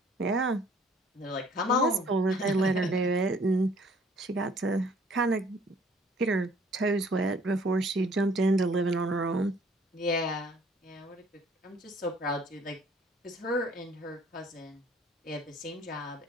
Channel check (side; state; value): both; normal; correlation 0.57